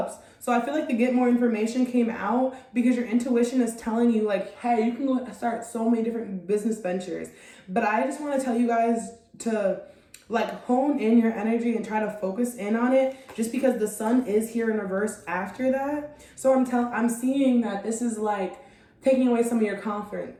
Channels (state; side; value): identical; both; correlation 1.00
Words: So I feel like the get more information came out because your intuition is telling you, like, hey, you can go start so many different business ventures. But I just want to tell you guys to like hone in your energy and try to focus in on it, just because the sun is here in reverse after that. So I'm seeing that this is like taking away some of your